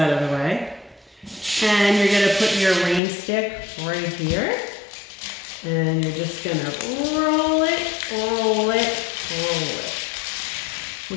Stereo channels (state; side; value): drops out; right; at 3.0 s